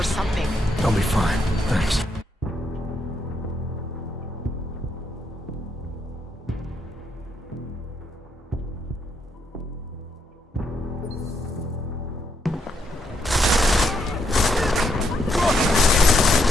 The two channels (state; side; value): normal; both; correlation 0.77